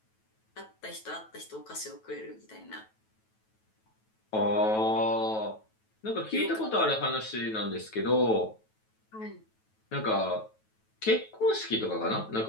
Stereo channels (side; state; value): right; late; 9.2 ms